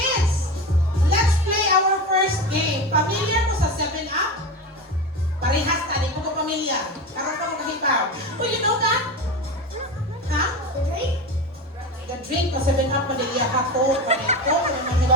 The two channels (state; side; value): normal; both; correlation 0.24